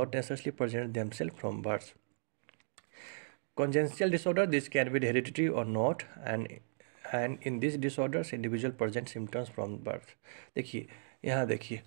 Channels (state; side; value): silent; left; digital silence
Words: necessarily present themselves from birth. Congenital disorder, this can be hereditary or not, and in these disorders, individual present symptoms from birth. देखिए, यहाँ देखिए,